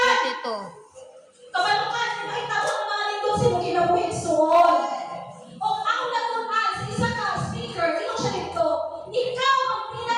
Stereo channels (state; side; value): identical; both; correlation 1.00